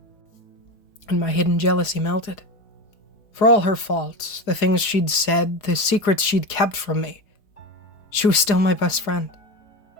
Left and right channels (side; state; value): right; late; 4.9 ms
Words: and my hidden jealousy melted. For all her faults, the things she'd said, the secrets she'd kept from me, she was still my best friend,